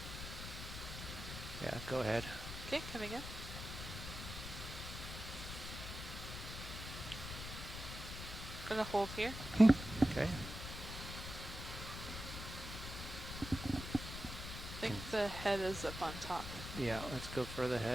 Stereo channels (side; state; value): left; noise; rumble, 8 dB below the sound